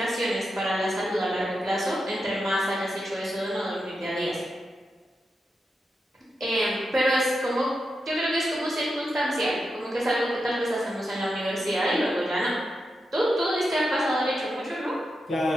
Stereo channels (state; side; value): normal; both; correlation 0.87